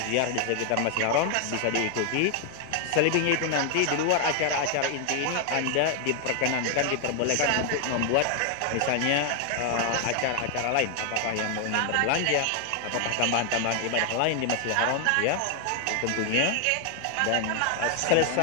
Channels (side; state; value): both; different; correlation 0.00